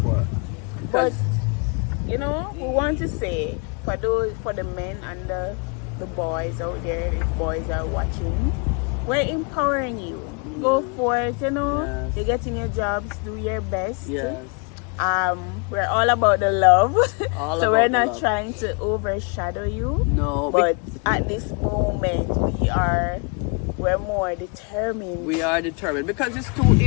work. But Because you know, we want to say for the men and the boys out there, if boys are watching, we're empowering you. Go for it, you know. Yes. You're getting your jobs, do your best. yes, We're all about the love. All so we're about the not love. trying to overshadow you. no, But at this moment we're more determined. we are determined because if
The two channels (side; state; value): right; quieter; 34.7 dB